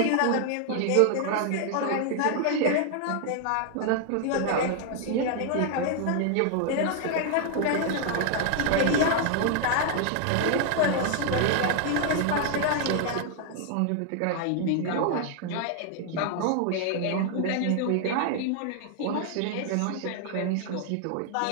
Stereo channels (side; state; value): both; different; correlation 0.00